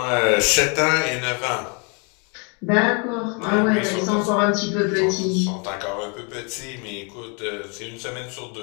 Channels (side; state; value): right; quieter; 34.8 dB